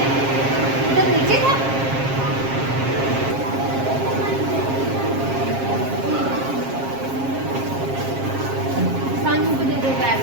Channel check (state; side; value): late; left; 7.5 ms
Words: इधर नीचे था सानू को दे दो बैग।